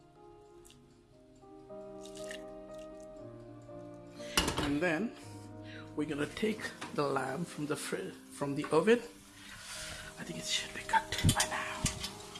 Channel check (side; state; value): both; identical; correlation 1.00